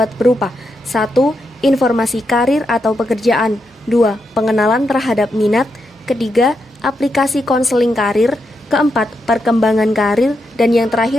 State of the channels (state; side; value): normal; both; correlation 0.83